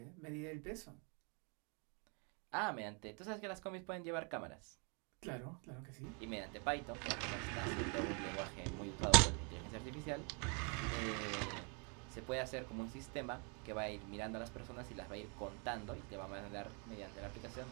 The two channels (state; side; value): quieter; left; 36.2 dB